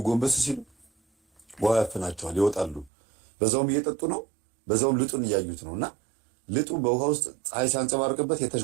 ጎንበስ ሲሉ ውሃ ያፍናቸዋል፣ ይወጣሉ። በዛውም እየጠጡ ነው፣ በዛውም ልጡን እያዩት ነውና ልጡ በውሃ ውስጥ ፀሐይ ሲያንጸባርቅበት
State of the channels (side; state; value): left; drops out; at 2.9 s